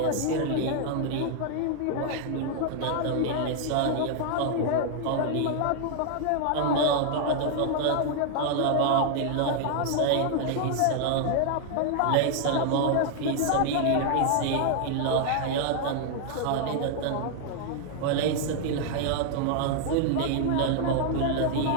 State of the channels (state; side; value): different; both; correlation 0.00